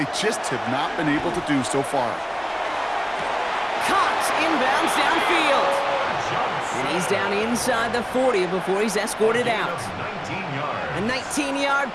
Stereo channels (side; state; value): both; identical; correlation 1.00